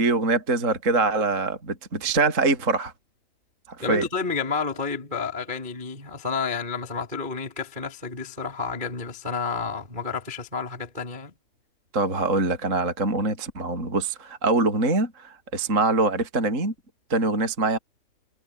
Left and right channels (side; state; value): left; late; 3.7 ms